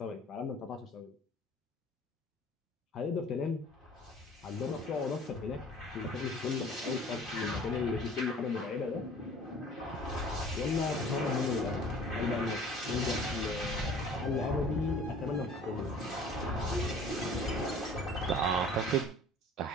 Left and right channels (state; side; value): normal; both; correlation 0.48